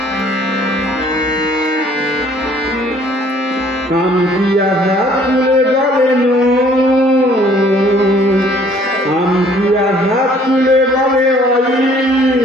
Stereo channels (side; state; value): both; normal; correlation 0.58